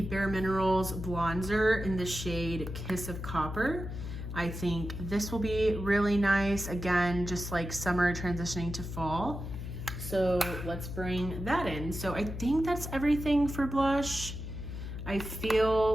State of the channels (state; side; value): noise; left; hum, 7 dB below the sound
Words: Bare Minerals bronzer in the shade Kiss of Copper. I think this will be really nice. Again, just like summer transitioning to fall. So let's bring that in. So I think that's everything for blush. I feel